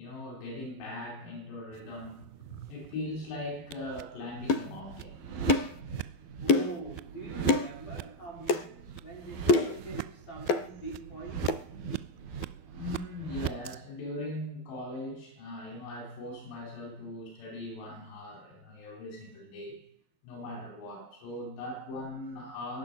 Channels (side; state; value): right; late; 12 ms